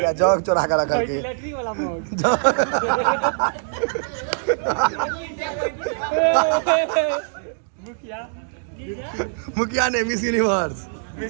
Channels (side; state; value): left; silent; digital silence